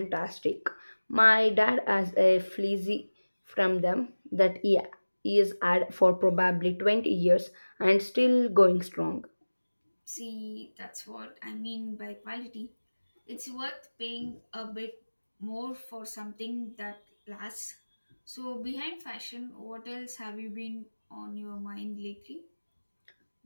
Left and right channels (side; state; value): both; inverted; correlation -1.00